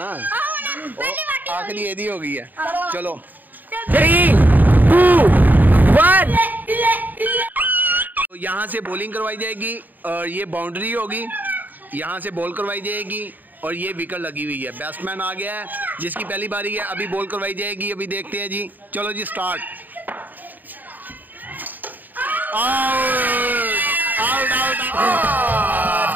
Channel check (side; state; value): left; late; 0.087 ms